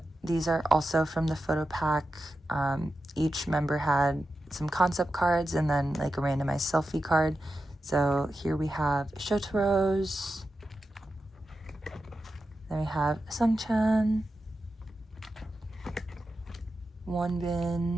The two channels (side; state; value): both; normal; correlation 0.91